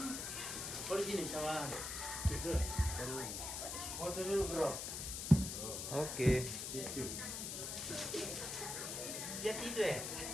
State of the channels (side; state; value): left; noise; hiss, 4 dB below the sound